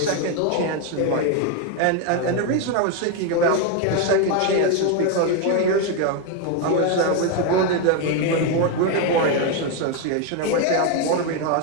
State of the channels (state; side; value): different; both; correlation 0.01